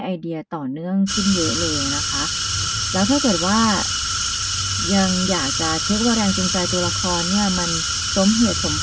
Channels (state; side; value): identical; both; correlation 1.00